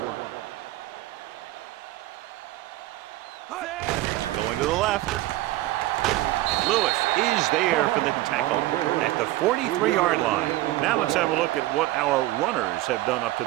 Going to the left. Lewis is there for the tackle at the 43-yard line. Now let's have a look at what our runners have done up to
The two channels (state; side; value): quieter; left; 16.9 dB